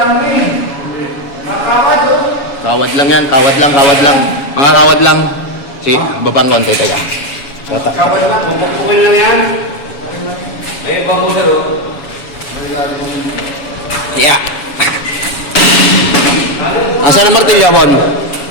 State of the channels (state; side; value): late; right; 7.1 ms